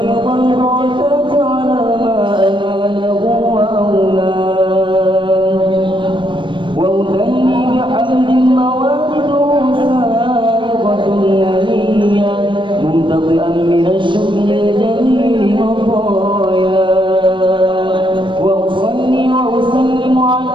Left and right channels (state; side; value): late; left; 0.24 ms